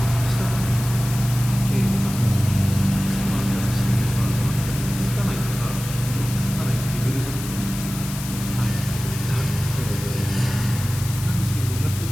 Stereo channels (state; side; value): noise; left; hiss, 10 dB below the sound